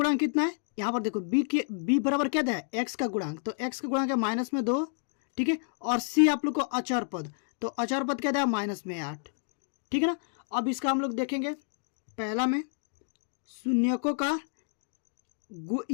कितना है, यहाँ पर देखो बी बराबर क्या है, एक्स का गुणांक, तो एक्स का गुणांक है माइनस में 2, ठीक है। और सी आप लोग को अचर पद, तो अचर पद क्या है माइनस में 8, ठीक है ना। अब इसका हम लोग देखेंगे पहला में शून्यकों का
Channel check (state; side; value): silent; right; digital silence